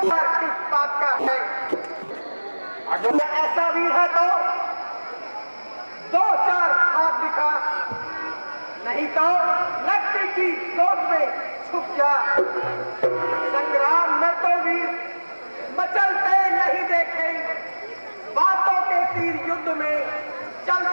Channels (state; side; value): inverted; both; correlation -1.00